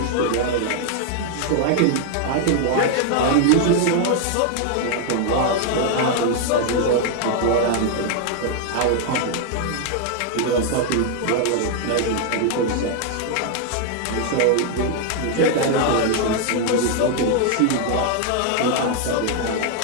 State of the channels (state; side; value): different; both; correlation 0.00